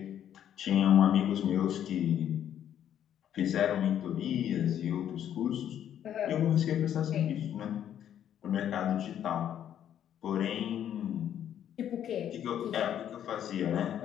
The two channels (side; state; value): right; quieter; 10.2 dB